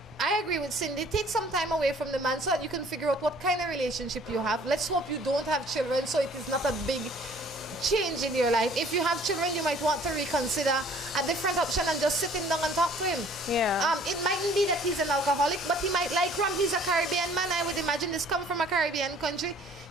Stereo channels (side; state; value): both; normal; correlation 0.54